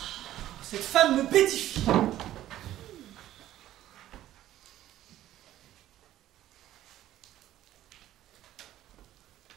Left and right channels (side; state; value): left; quieter; 13.4 dB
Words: Cette femme me pétifie.